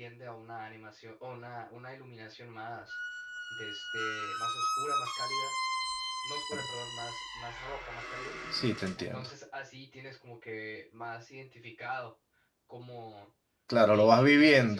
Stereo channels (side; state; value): both; identical; correlation 1.00